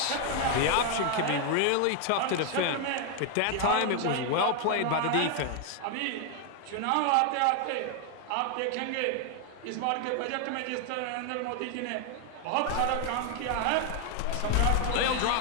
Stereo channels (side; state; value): both; different; correlation 0.00